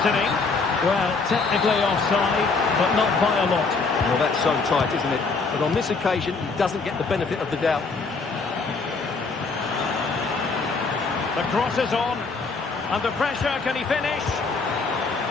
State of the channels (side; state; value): right; quieter; 4.3 dB